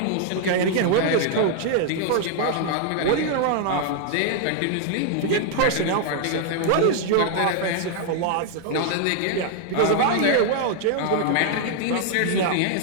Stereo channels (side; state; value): both; different; correlation 0.00